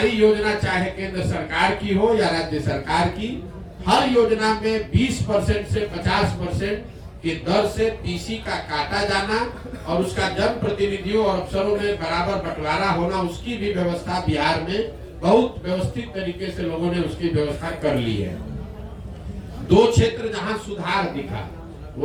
योजना चाहे केंद्र सरकार की हो या राज्य सरकार की, हर योजना में 20% से 50% की दर से पीसी का काटा जाना और उसका जन प्रतिनिधियों और अफसरों में बराबर बंटवारा होना, उसकी भी व्यवस्था बिहार में बहुत व्यवस्थित तरीके से लोगों ने उसकी व्यवस्था कर ली है। दो क्षेत्र जहां सुधार दिखा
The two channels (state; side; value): identical; both; correlation 1.00